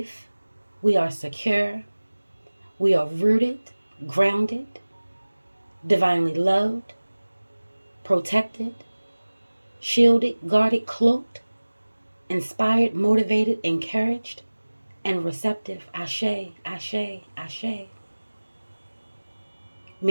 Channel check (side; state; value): both; inverted; correlation -1.00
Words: We are secure. We are rooted, grounded, divinely loved, protected, shielded, guarded, cloaked, inspired, motivated, encouraged, and receptive. Ashe, Ashe, Ashe.